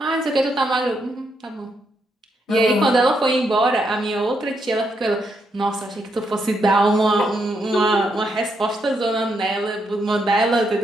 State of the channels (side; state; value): both; normal; correlation 0.78